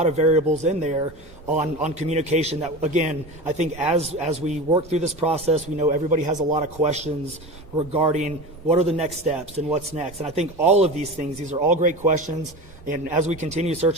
of variables in there on communication that, again, I think as we work through this process, we know everybody has a lot of questions regarding what are the next steps and what's next. And I think all of these things, these are all great questions. And as we continue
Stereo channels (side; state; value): both; normal; correlation 0.30